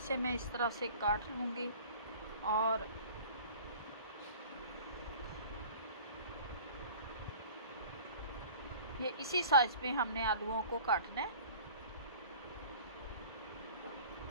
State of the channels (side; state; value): both; inverted; correlation -0.44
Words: मैं इस तरह से काट लूँगी और ये इसी साइज़ में हमने आलूओं को काटना है।